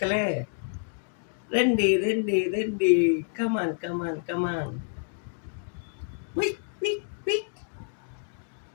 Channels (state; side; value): silent; right; digital silence